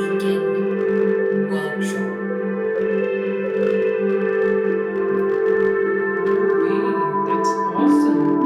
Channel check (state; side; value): identical; both; correlation 1.00